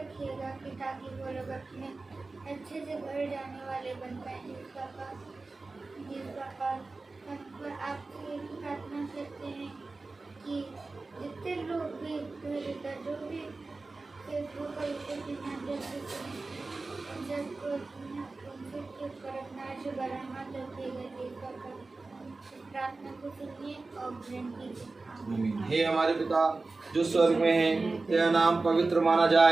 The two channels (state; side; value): quieter; left; 3.6 dB